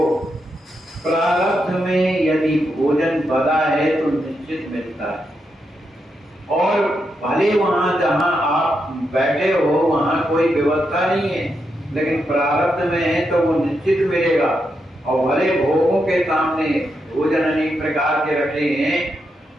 प्रारब्ध में यदि भोजन बदा है तो निश्चित मिलता है, और भले वहां जहां आप बैठे हो वहां कोई व्यवस्था नहीं है, लेकिन प्रारब्ध में है तो वो निश्चित मिलेगा। और भले भोगों के सामने भोजन अनेक प्रकार के रखे हैं,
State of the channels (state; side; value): normal; both; correlation 0.83